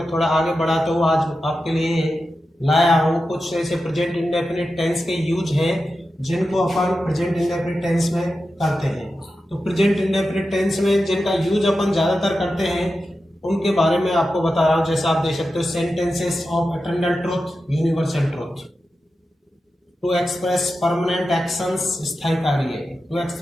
थोड़ा आगे बढ़ाता हूँ। आज आपके लिए लाया हूँ कुछ ऐसे प्रेजेंट इंडेफिनिट टेंस के यूज हैं जिनको अपन प्रेजेंट इंडेफिनिट टेंस में करते हैं। तो प्रेजेंट इंडेफिनिट टेंस में जिनका यूज अपन ज़्यादातर करते हैं उनके बारे में आपको बता रहा हूँ। जैसा आप देख सकते हो, sentences of eternal truth, universal truth. To express permanent actions, स्थायी कार्य। To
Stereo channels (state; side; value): normal; both; correlation 0.91